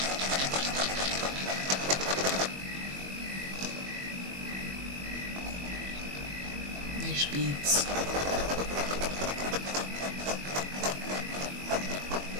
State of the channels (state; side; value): late; left; 21 ms